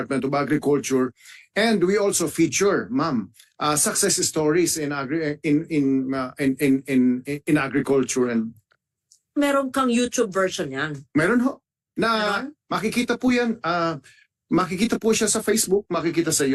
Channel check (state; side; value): identical; both; correlation 1.00